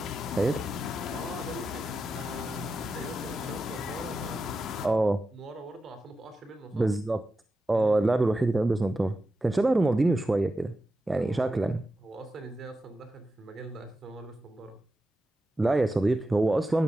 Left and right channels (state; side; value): normal; both; correlation 0.90